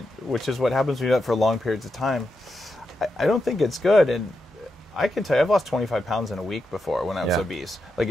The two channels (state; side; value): normal; both; correlation 0.86